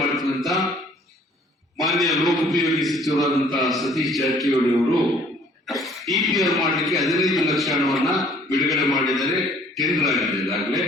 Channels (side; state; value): both; normal; correlation 0.57